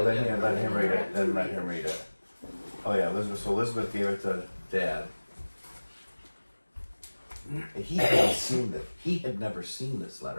then yeah, let him read it. Then let him read it. Oh yeah, Elizabeth. So Elizabeth gave it to Dad. He hadn't seen it. He had never seen this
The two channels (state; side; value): inverted; both; correlation -1.00